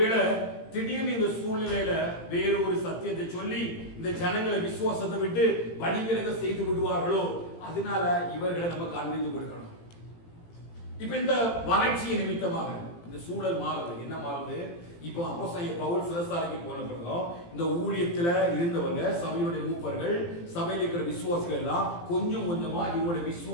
திடீர்னு இந்த சூழ்நிலையில வேறு ஒரு சத்தியத்தை சொல்லி இந்த ஜனங்களை விசுவாசத்தை விட்டு வழிவிலக செய்து விடுவார்களோ, அதனால இவர்களை நம்ம காண்பித்து கொடுக்கணும். இப்ப இந்த வறட்சியை நிமித்தமாக இந்த சூழல் மாறுது. என்ன மாறுது? இப்போ அப்போஸ்தலன் பவுல் சிறைசாலைக்கு போன பிறகு இந்த ஊழியத்துல இருந்தவங்க, சபையுடைய மூப்பர்கள், சபையில் இருக்கிற விசுவாசிகள் எல்லாம் கொஞ்சம் கொஞ்சமா இவங்களுடைய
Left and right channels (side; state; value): right; late; 18 ms